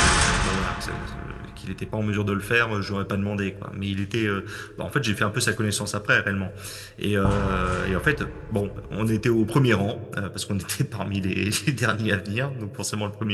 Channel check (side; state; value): both; identical; correlation 1.00